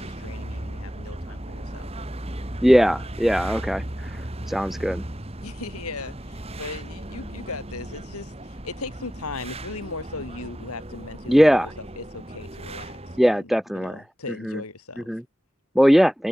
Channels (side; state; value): both; normal; correlation 0.94